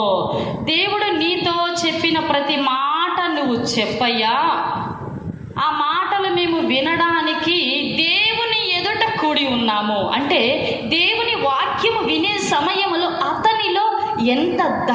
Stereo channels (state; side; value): identical; both; correlation 1.00